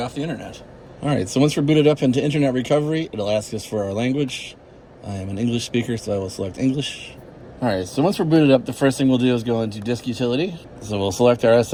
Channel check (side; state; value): both; identical; correlation 1.00